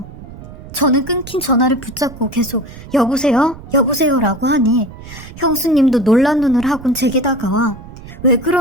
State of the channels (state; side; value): noise; right; rumble, 15 dB below the sound